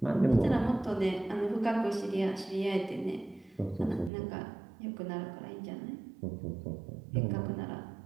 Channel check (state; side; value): drops out; left; at 4.1 s